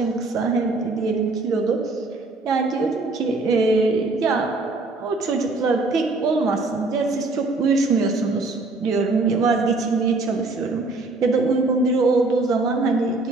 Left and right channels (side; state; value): left; quieter; 3.3 dB